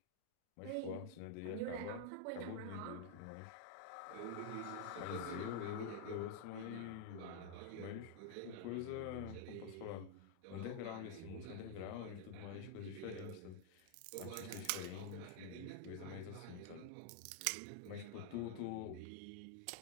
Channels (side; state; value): both; different; correlation 0.00